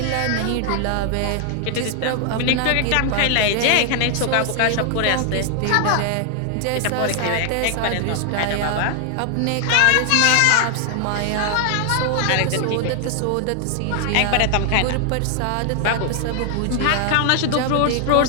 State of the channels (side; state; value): both; different; correlation 0.00